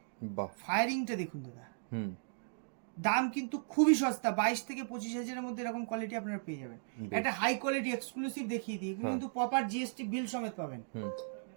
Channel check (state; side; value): silent; left; digital silence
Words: বাহ। ফায়ারিংটা দেখুন দাদা, হুম, দাম কিন্তু খুবই সস্তা, 22 থেকে 25,000 মধ্যে এরকম কোয়ালিটি আপনারা পেয়ে যাবেন। বেশ। একটা হাই কোয়ালিটি এক্সক্লুসিভ দেখিয়ে দিই, এগুলো হ্যাঁ। কিন্তু প্রপার জিএসটি বিল সমেত পাবেন। হুম,